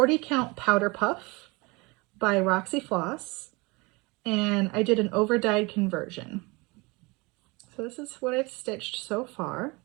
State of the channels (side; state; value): left; quieter; 25.9 dB